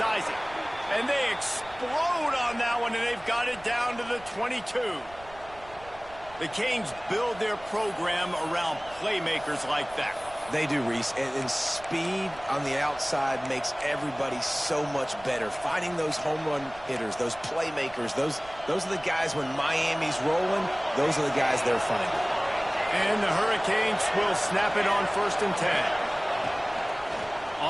And they explode on that one, and they've got it down to the 22. The Canes build their program around playmakers like that. They do, Reese. And speed on the outside makes everybody so much better. Finding those home run hitters, those playmakers, those are the guys when Miami's rolling, those are the guys they're finding. And the Hurricanes will snap it on 1st and 10.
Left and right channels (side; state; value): right; noise; rumble, 21 dB below the sound